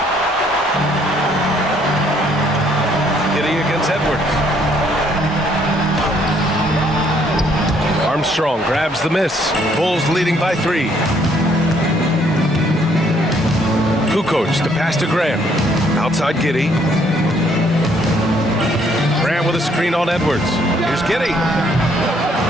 Giddey against Edwards. Armstrong grabs the miss. Bulls leading by 3. Kukoc, the pass to Graham. Outside Giddey. Graham with a screen on Edwards. Here's Giddey.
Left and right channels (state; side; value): normal; both; correlation 0.66